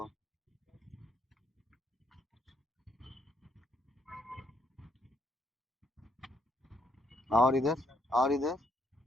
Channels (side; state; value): both; normal; correlation 0.70